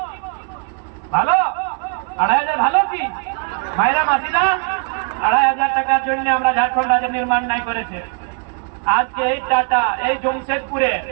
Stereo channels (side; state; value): left; quieter; 38.7 dB